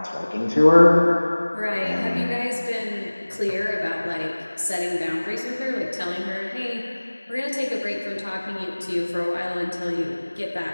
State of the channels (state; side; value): inverted; both; correlation -1.00